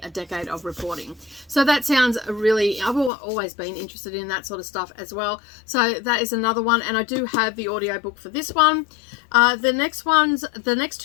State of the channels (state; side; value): drops out; right; at 3.1 s